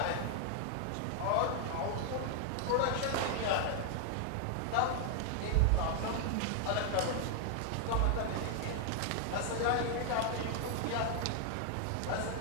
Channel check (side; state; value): both; different; correlation 0.00